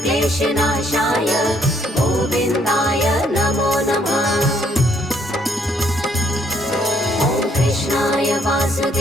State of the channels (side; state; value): both; normal; correlation 0.68